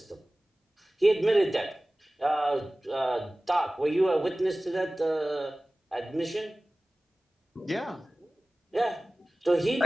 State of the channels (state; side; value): normal; both; correlation 0.97